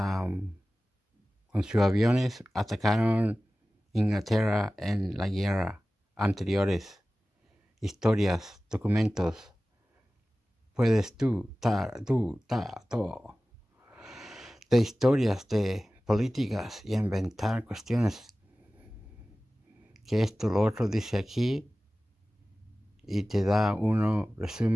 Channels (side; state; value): both; normal; correlation 0.97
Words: con sus aviones atacaron Inglaterra en la guerra anteriores. Historias, documentos. Puedes todo. De historias, de políticas y inventar cuestiones. Que esto, lo otro dice aquí. Y te da uno